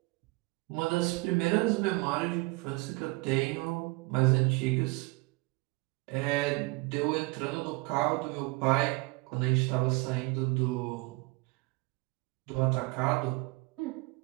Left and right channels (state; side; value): quieter; left; 25.2 dB